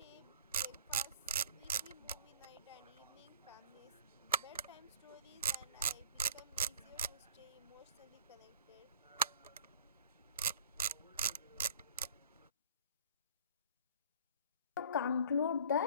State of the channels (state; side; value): inverted; both; correlation -0.50